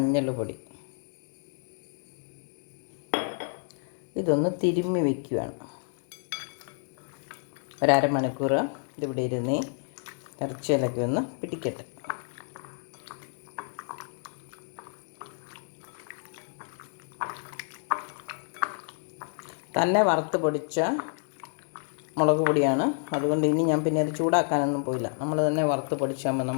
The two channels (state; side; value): silent; right; 58 dB below the other